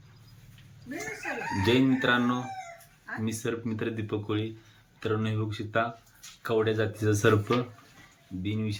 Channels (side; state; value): both; identical; correlation 1.00